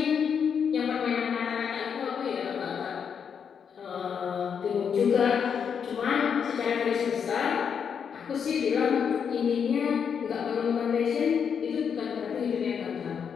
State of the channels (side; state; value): right; quieter; 7.1 dB